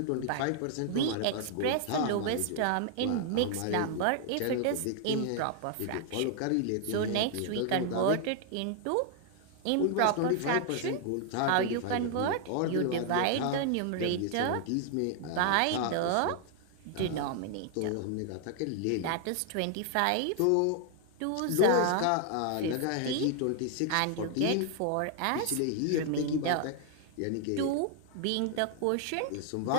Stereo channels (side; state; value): both; different; correlation 0.00